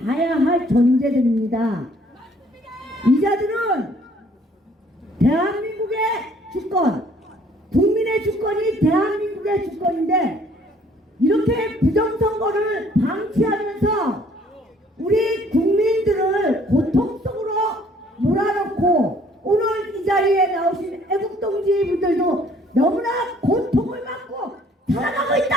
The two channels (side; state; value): both; normal; correlation 0.60